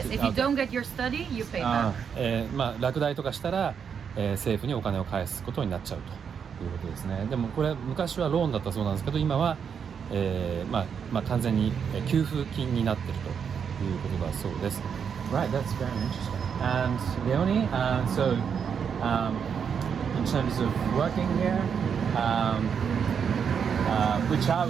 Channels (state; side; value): quieter; left; 7.1 dB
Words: if you don't get your study, you pay back. 落第とかしたら、政府にお金を返すことになっちゃうということですね。でもこれ昔はローンだったそうなんですけど、今は、完全に給付金になっているということだそうです。Right, that's very interesting. And Leonie, so in terms of working here, which